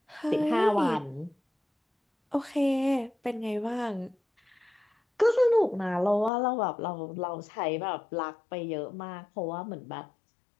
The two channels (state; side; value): drops out; right; at 6.3 s